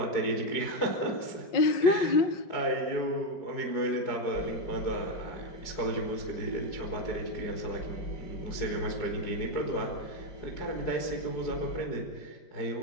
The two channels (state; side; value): late; right; 4.8 ms